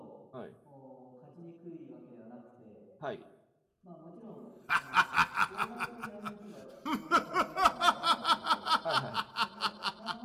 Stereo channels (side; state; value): both; identical; correlation 1.00